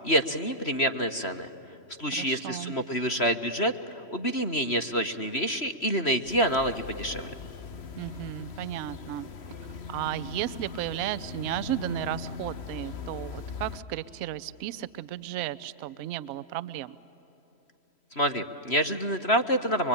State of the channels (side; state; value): right; late; 3.0 ms